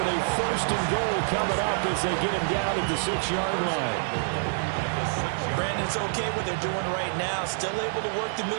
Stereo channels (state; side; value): silent; left; digital silence